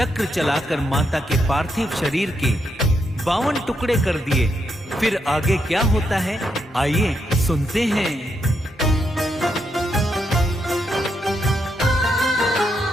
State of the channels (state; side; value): normal; both; correlation 0.80